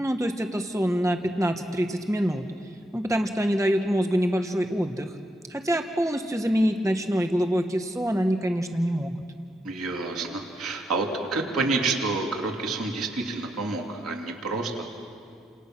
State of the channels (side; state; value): both; normal; correlation 0.82